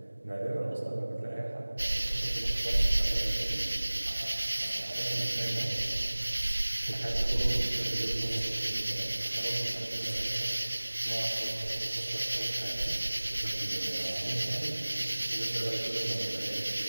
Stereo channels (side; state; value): both; inverted; correlation -1.00